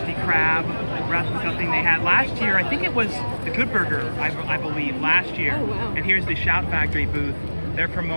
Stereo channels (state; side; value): inverted; both; correlation -1.00